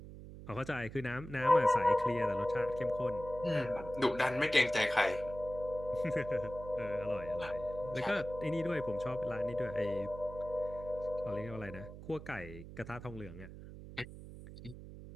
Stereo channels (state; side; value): noise; right; hum, 13 dB below the sound